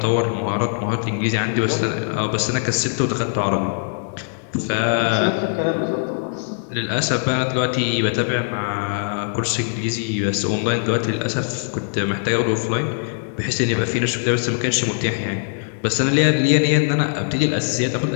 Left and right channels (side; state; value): right; silent; digital silence